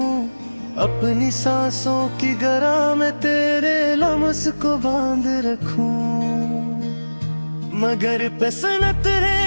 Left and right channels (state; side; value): inverted; both; correlation -1.00